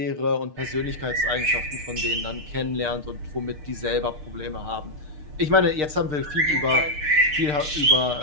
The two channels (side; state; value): left; late; 6.6 ms